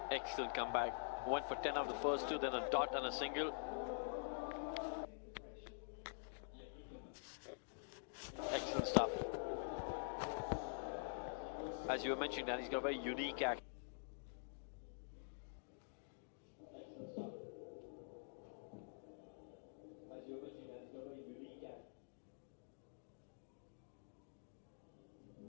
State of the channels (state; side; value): silent; right; digital silence